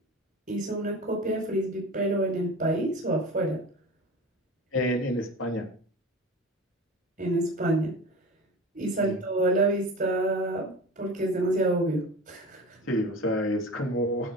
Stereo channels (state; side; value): normal; both; correlation 0.33